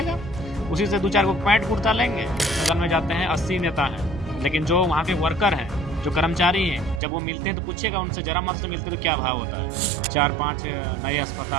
उसी से 2-4 को पैंट कुर्ता लेंगे। सदन में जाते हैं 80 नेता हैं, लेकिन जो वहाँ के वर्कर हैं, जो कर्मचारी हैं, जब वो मिलते हैं तो पूछेगा उनसे, जरा मत से मिलते तो क्या भाव होता है। 4-5 नए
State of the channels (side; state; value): left; drops out; at 7.0 s